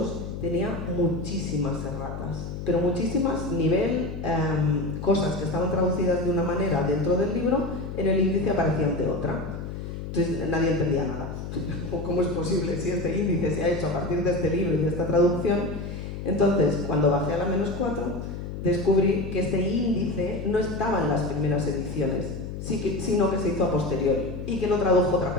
tenía muchísimas erratas, pero muchísimas, nivel cosas que estaban traducidas de una manera dentro del libro, en el índice aparecían de otra. Entonces nadie entendía nada. ¿Cómo es posible si este índice se ha hecho a partir de este libro y de esta traducción? Entonces, cuando bajé a la -4, descubrí que este índice no estaba en las primeras ediciones, sino que se hizo a posteriori y que lo tradujo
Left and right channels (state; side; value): noise; left; hum, 7 dB below the sound